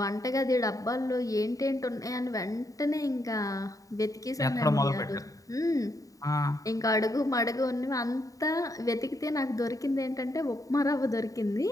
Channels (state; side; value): late; right; 0.16 ms